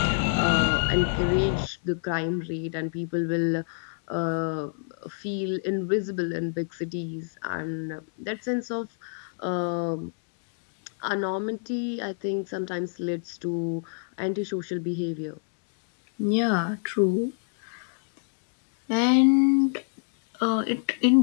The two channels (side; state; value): right; silent; digital silence